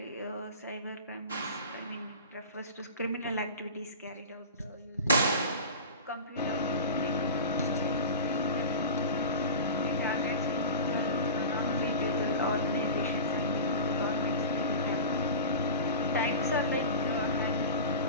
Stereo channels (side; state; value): both; inverted; correlation -0.32